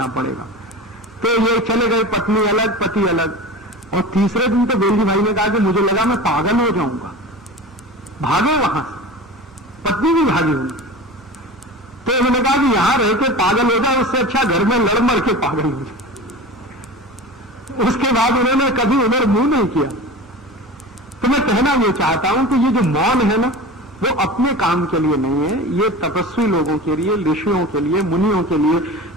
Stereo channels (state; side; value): normal; both; correlation 0.33